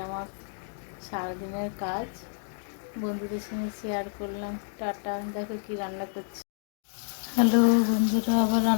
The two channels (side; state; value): right; silent; digital silence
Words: আমার সারাদিনের কাজ। বন্ধুদের সঙ্গে শেয়ার করলাম। টাটা। দেখো কি রান্না করছি। হ্যালো বন্ধুরা, আবার